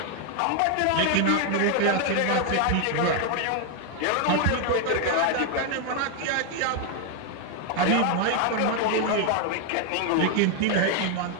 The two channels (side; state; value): both; different; correlation 0.01